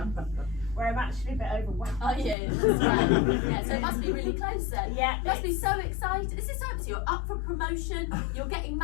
where I'm actually a bit overwhelmed. Oh yeah, that's right. Yeah, so it must be really close then. Yeah, You must be so excited. This is so exciting. You're up for promotion. You're getting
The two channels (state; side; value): drops out; right; at 2.4 s